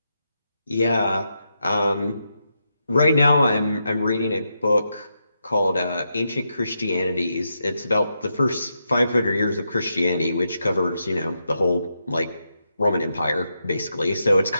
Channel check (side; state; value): both; inverted; correlation -0.84